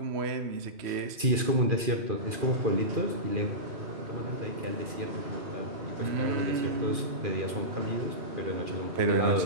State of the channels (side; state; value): left; late; 2.4 ms